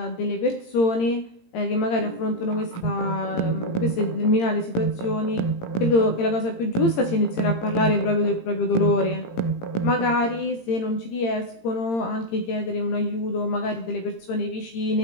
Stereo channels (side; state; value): right; late; 18 ms